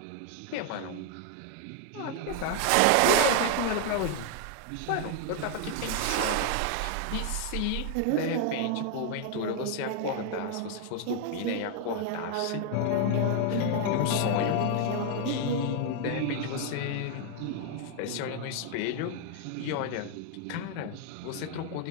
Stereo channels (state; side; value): different; both; correlation 0.00